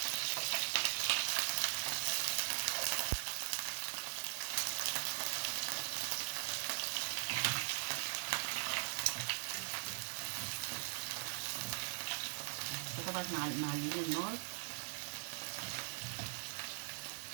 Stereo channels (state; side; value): quieter; left; 35.5 dB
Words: فطبعا احنا معليين النار.